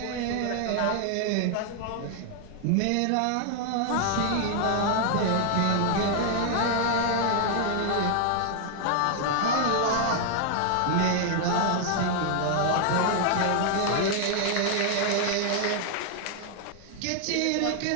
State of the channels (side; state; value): both; different; correlation 0.00